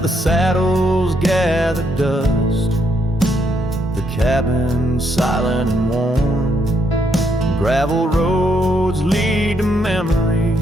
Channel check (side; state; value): both; normal; correlation 0.75